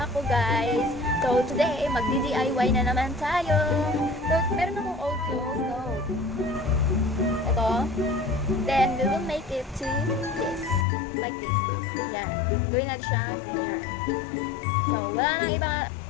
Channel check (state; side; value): drops out; right; at 10.9 s